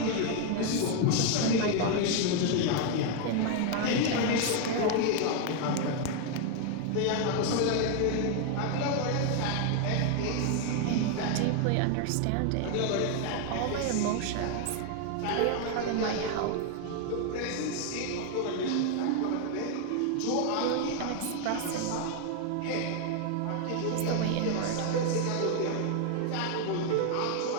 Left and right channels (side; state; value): both; different; correlation 0.01